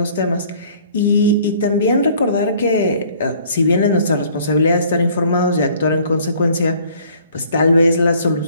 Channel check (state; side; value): inverted; both; correlation -0.56